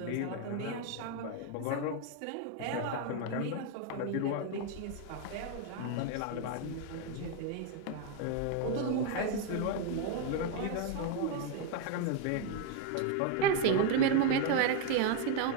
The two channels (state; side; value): different; both; correlation 0.01